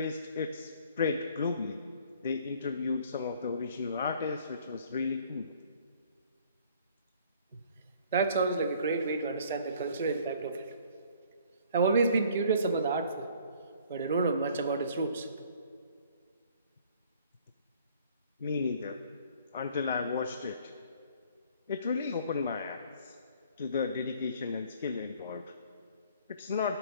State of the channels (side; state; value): both; inverted; correlation -0.56